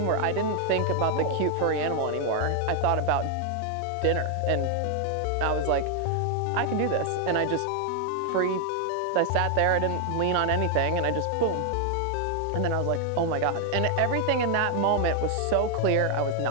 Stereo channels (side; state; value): both; different; correlation 0.00